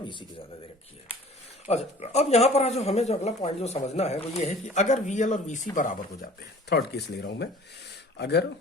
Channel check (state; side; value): normal; both; correlation 0.48